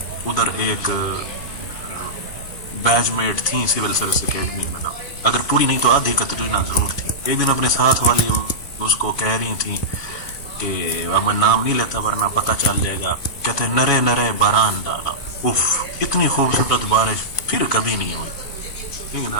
उधर एक बैचमेट थी सिविल सर्विस एकेडमी में ना, अगर पूरी नहीं तो आधी कतरीना जरूर थी। एक दिन अपने साथ वाली उसको कह रही थी कि अब मैं नाम नहीं लेता वरना पता चल जाएगा, कहते नरे नरे बारान डाला, उफ इतनी खूबसूरत बारिश फिर कभी नहीं हुई। ठीक है ना,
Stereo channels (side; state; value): right; late; 2.5 ms